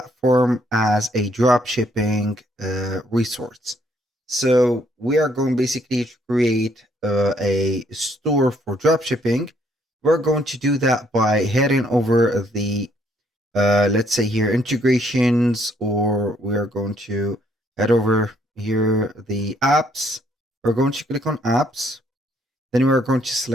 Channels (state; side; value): normal; both; correlation 0.68